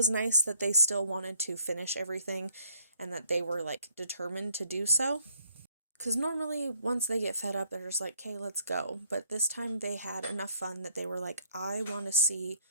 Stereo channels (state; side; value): inverted; both; correlation -0.66